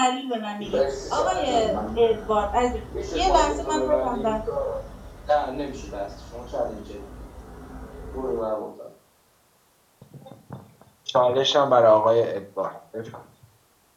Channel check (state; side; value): identical; both; correlation 1.00